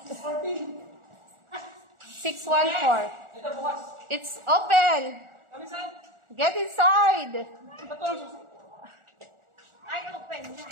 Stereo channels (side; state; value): left; late; 1.4 ms